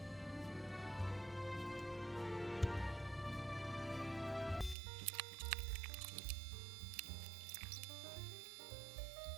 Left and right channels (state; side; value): drops out; left; at 4.8 s